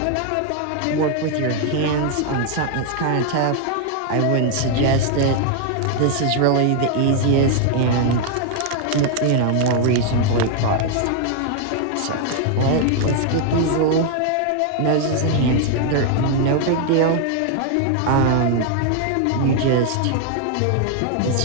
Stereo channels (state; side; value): different; both; correlation 0.00